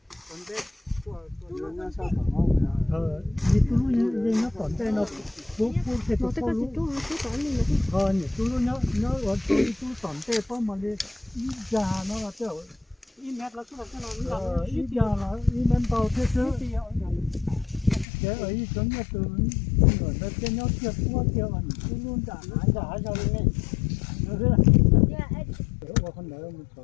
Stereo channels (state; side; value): drops out; right; at 18.1 s